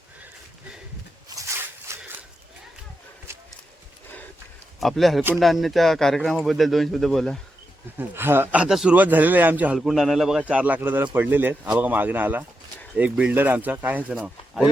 आपल्या हलकुंड आणण्याच्या कार्यक्रमाबद्दल 2 शब्द बोला. हा आता सुरुवात झालेली आहे आमची हलकुंड आणायला. बघा 4 लाकडं जरा पडलेले आहेत. हा बघा मागणं आला एक बिल्डर आमचा. काय ह्याचं नाव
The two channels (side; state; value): both; normal; correlation 0.86